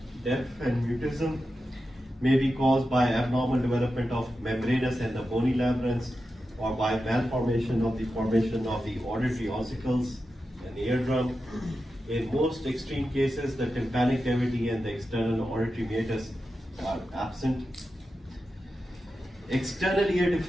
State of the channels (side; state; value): both; normal; correlation 0.91